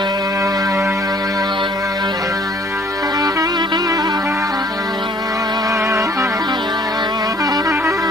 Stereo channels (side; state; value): both; normal; correlation 0.58